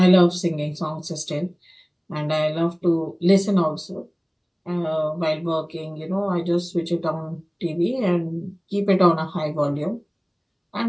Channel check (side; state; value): both; identical; correlation 1.00